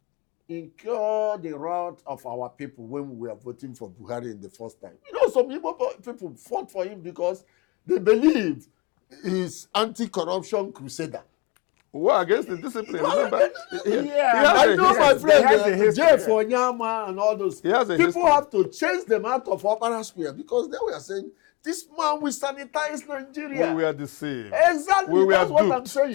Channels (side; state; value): right; quieter; 24.8 dB